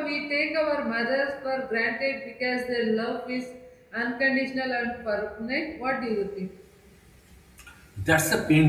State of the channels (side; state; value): both; identical; correlation 1.00